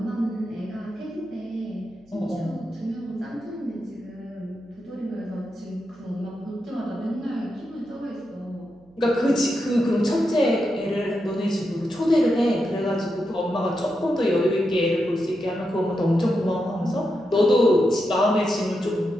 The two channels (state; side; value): noise; right; hum, 29 dB below the sound